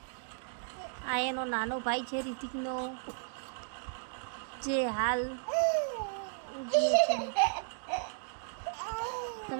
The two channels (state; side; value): silent; left; digital silence